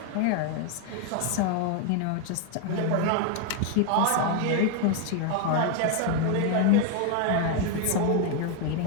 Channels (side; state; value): both; different; correlation 0.01